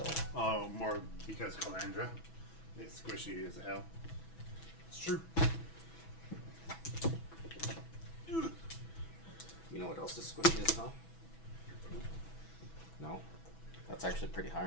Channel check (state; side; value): late; right; 6.1 ms